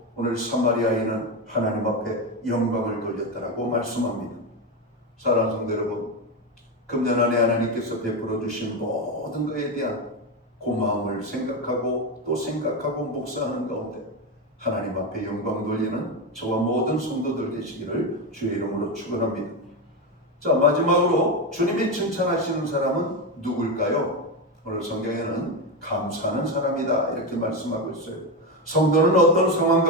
오늘 사마리아인은 하나님 앞에 영광을 돌렸다라고 말씀합니다. 사랑하는 성도 여러분, 금년 안에 하나님께서 베풀어 주신 모든 것에 대한 고마움을 생각하고 또 생각하고 묵상하는 가운데 하나님 앞에 영광 돌리는 저와 모든 성도들 되시기를 주의 이름으로 축원합니다. 자, 마지막으로 주님이 칭찬하시는 사람은 누굴까요? 오늘 성경에는 감사하는 사람이다, 이렇게 말씀하고 있어요. 성도는 어떤 상황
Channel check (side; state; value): both; normal; correlation 0.13